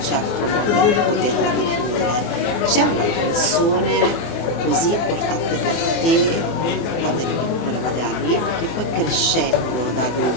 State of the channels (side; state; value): right; late; 24 ms